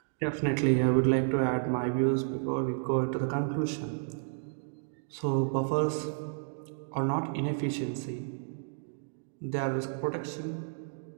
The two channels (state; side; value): silent; left; digital silence